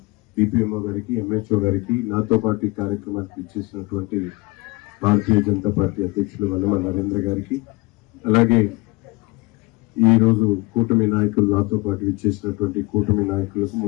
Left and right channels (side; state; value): right; quieter; 24.1 dB